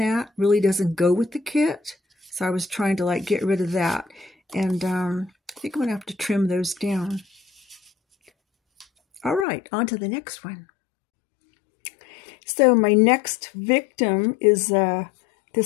really doesn't go with the kit. So I was trying to like get rid of that. And I think I'm going to have to trim those down. All right, on to the next one. So my next victim is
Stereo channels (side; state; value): right; drops out; at 9.5 s